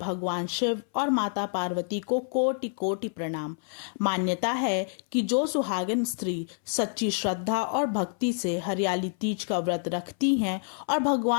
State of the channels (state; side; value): silent; right; 58 dB below the other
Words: शिव और माता पार्वती को कोटि कोटि प्रणाम। मान्यता है कि जो सुहागिन स्त्री सच्ची श्रद्धा और भक्ति से हरियाली तीज का व्रत रखती हैं और